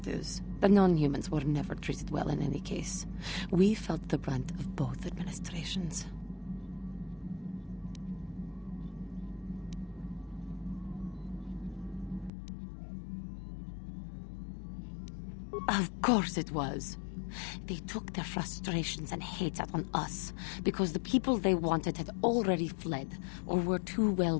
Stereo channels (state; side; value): drops out; right; at 12.3 s